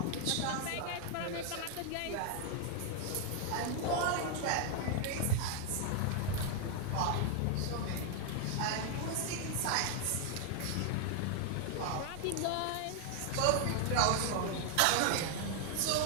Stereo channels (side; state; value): both; different; correlation 0.00